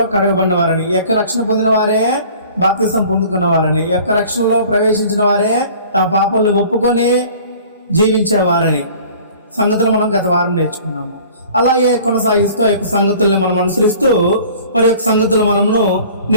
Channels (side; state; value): both; inverted; correlation -0.48